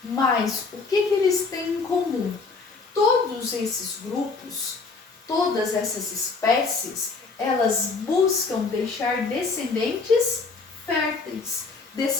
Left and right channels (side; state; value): right; quieter; 4.3 dB